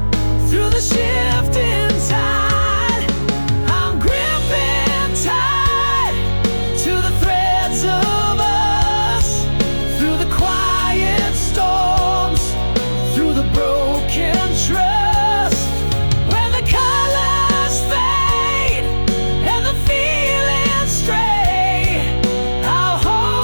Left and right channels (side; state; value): both; inverted; correlation -1.00